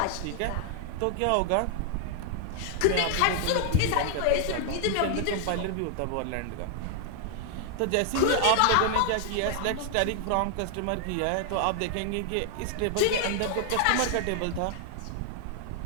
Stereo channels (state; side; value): different; both; correlation 0.00